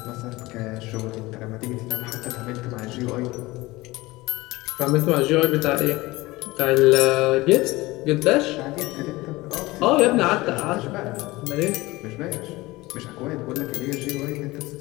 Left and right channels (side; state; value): right; quieter; 20.4 dB